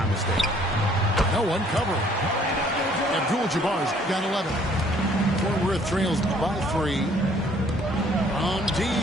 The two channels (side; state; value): both; normal; correlation 0.60